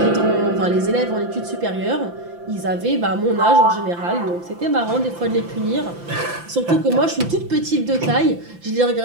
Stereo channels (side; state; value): left; late; 5.9 ms